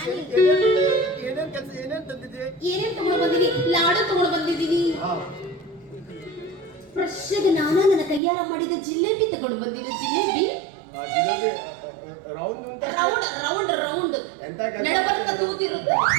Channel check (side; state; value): left; drops out; at 8.2 s